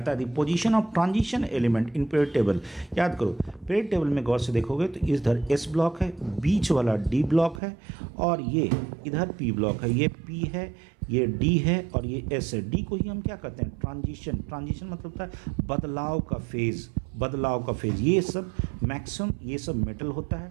है the position of transition element in period table. याद करो, पीरियड टेबल में गौर से देखोगे तो इधर S ब्लॉक है, बीच वाला D ब्लॉक है, और ये इधर P ब्लॉक है, ये P है, ये D है, और ये S है। D को ही हम क्या कहते हैं, ट्रांजिशन। ट्रांजिशन मतलब होता है बदलाव का फेज, बदलाव का फेज। ये सब मैक्सिमम ये सब मेटल होता है,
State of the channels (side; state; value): left; drops out; at 7.6 s